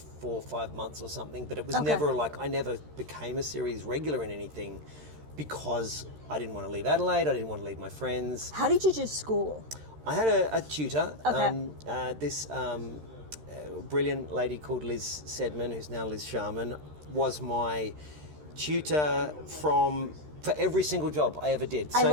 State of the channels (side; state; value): left; late; 13 ms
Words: or 5 months or something, but it was never like, I never became a series regular in anything because I didn't want to leave Adelaide, I didn't want to leave my friends. How did you do school? I had a tutor, Okay. this brilliant lady called Liz Sedman, who's now Liz Sharman, was my tutor for every single job I ever did. I